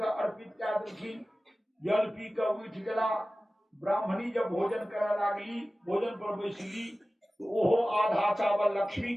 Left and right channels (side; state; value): both; normal; correlation 0.96